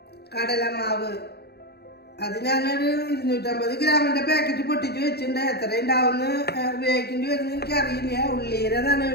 കടലമാവ് അത് ഞാനൊരു 250 ഗ്രാമിൻ്റെ പാക്കറ്റ് പൊട്ടിച്ച് വെച്ചിട്ടുണ്ട്. എത്ര ഉണ്ടാവുമെന്ന് ഉപയോഗിക്കേണ്ടി വരുമെന്ന് എനിക്കറിയില്ല. ഉള്ളിയുടെ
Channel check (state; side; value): late; right; 0.47 ms